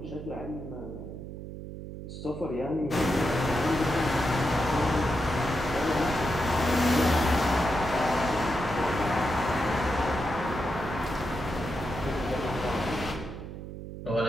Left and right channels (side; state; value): right; noise; hum, 10 dB below the sound